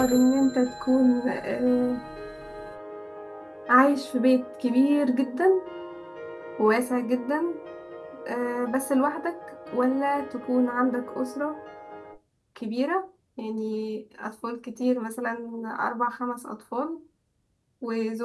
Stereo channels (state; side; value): identical; both; correlation 1.00